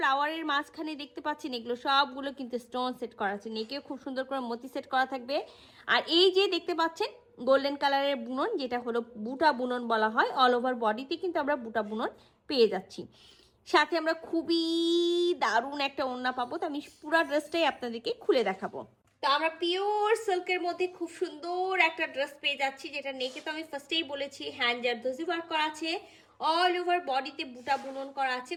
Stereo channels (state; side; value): identical; both; correlation 1.00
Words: মাঝখানে দেখতে পাচ্ছেন, এগুলো সবগুলো কিন্তু স্টোন সেট করা আছে। নেকেও খুব সুন্দর করে মতি সেট করা থাকবে। আর এই যে দেখতে পাচ্ছেন গোল্ডেন কালারের বুনন, যেটা হলো বুটা বুনন বলা হয়। অল ওভার বডিতে কিন্তু আমরা বুটা বুনন পেয়ে যাচ্ছি। সাথে আমরা খুবই দারুণ একটা ওড়না পাবো। তো আমি পুরো ড্রেসটাই আপনাদেরকে খুলে দেখাবো। তো আমরা পিওর সিল্কের মধ্যে খুব সুন্দর একটা ড্রেস পেয়ে যাচ্ছি, যেটা নেকে তো আমি ফার্স্টেই বলেছি হ্যান্ড জারদোজি ওয়ার্ক করা আছে। অল ওভার বডিতে বুটা বুনন করা আছে